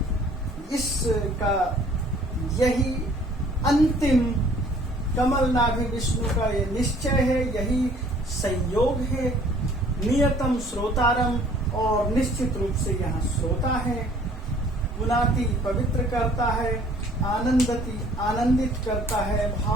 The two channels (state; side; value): normal; both; correlation 0.56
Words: इसका यही अंतिम कमल नाभि विष्णु का ये निश्चय है, यही संयोग है। नियतम श्रोतारम, और निश्चित रूप से यहाँ श्रोता है। पुनाति, पवित्र करता है। आनंदति, आनंदित करता है,